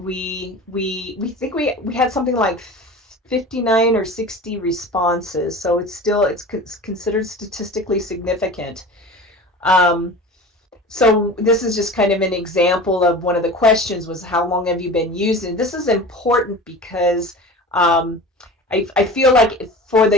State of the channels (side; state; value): both; normal; correlation 0.36